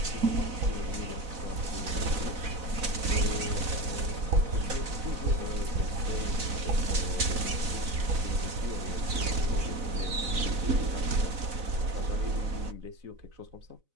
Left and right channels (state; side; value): late; left; 4.0 ms